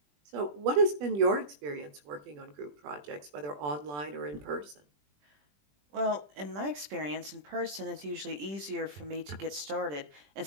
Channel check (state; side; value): late; left; 20 ms